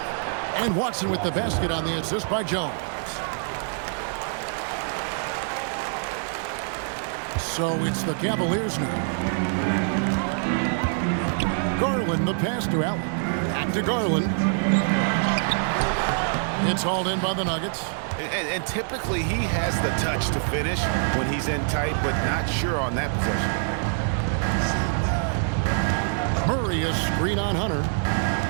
And Watson with the basket on the assist by Jones. So it's the Cavaliers now. Garland, the pass to Allen. Back to Garland. It's hauled in by the Nuggets. And typically he has the touch to finish when he's in tight, but not sure on that possession. Murray is screen on Hunter.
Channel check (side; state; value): left; silent; 62 dB below the other